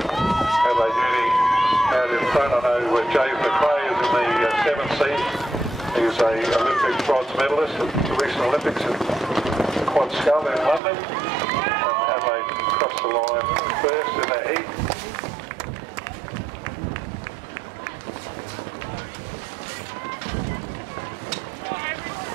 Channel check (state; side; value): drops out; left; at 10.8 s